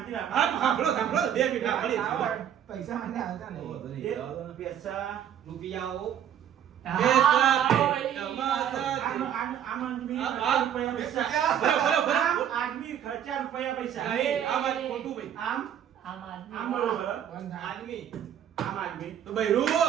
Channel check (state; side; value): quieter; left; 9.7 dB